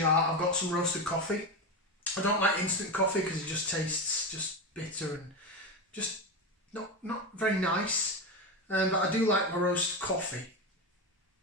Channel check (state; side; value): normal; both; correlation 0.17